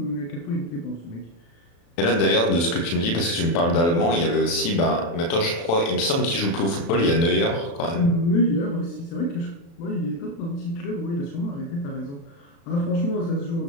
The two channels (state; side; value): late; right; 35 ms